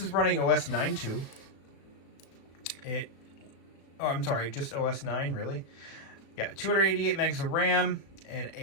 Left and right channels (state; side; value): late; right; 36 ms